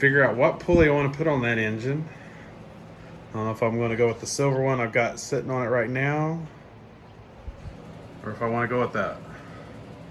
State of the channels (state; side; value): identical; both; correlation 1.00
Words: out what pulley I want to put on that engine. I don't know if I'm going to go with the silver one I've got sitting on it right now, or if I want to go with that